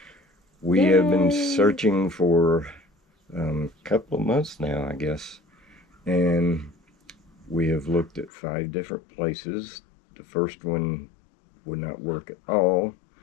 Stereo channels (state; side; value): drops out; right; at 8.3 s